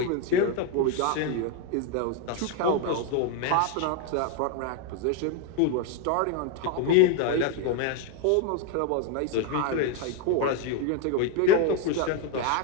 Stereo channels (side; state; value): both; different; correlation 0.01